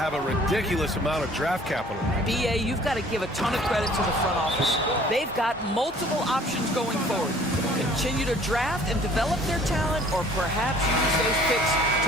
a ridiculous amount of draft capital. BA, you've got to give a ton of credit to the front office. They've got multiple options going forward. Continue to draft and develop their talent, or perhaps use those picks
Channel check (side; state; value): both; normal; correlation 0.53